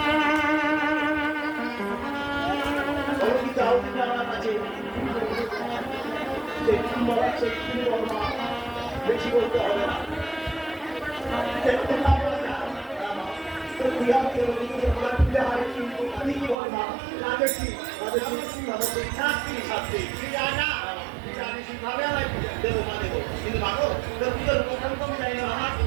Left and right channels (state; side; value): drops out; left; at 16.6 s